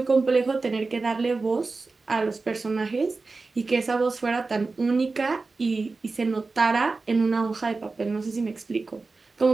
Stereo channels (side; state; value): left; quieter; 3.8 dB